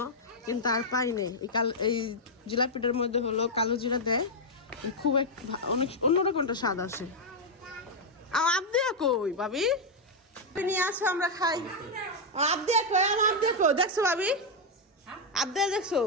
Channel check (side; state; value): both; normal; correlation -0.01